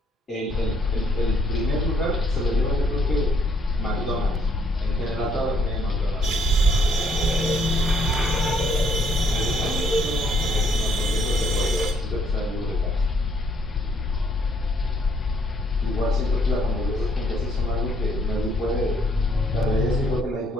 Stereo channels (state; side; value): normal; both; correlation 0.68